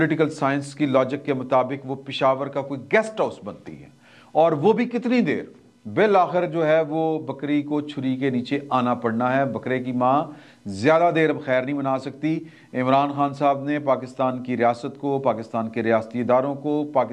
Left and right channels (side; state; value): both; identical; correlation 1.00